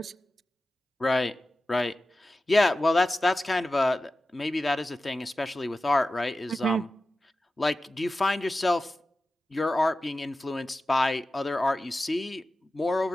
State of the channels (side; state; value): both; normal; correlation 0.94